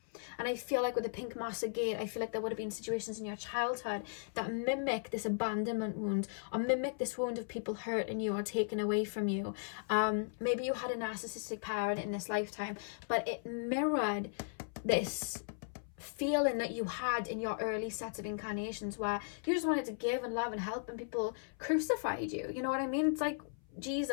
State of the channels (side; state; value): right; silent; 53 dB below the other